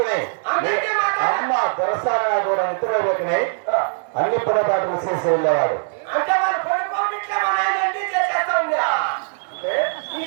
అమ్మ దొరసారా కూడా నిద్ర లేకనే అన్ని పొరపాట్లు చేసి వెళ్ళేవాడు. అంటే వాళ్ళు పడుకోవట్లే మా నాయన అన్ని చేసేస్తా ఉందా?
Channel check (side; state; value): left; silent; 65 dB below the other